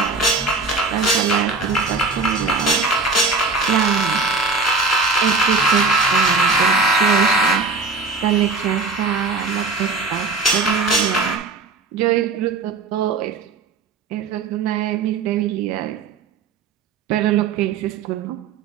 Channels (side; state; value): left; quieter; 4.0 dB